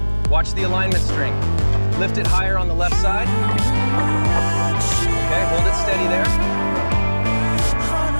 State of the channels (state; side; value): inverted; both; correlation -1.00